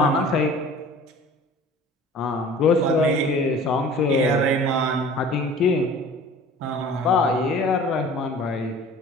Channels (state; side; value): normal; both; correlation 0.45